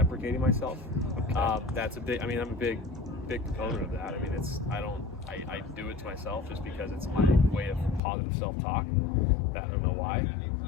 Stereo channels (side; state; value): right; drops out; at 8.0 s